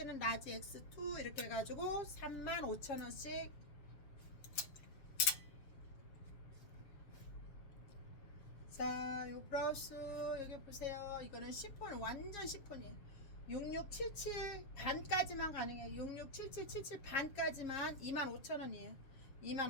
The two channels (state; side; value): late; right; 7.3 ms